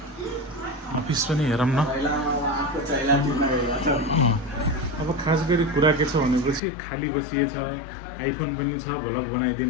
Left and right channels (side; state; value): right; drops out; at 6.6 s